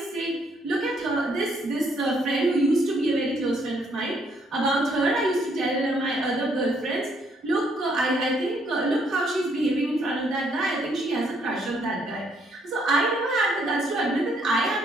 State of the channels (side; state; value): both; normal; correlation 0.69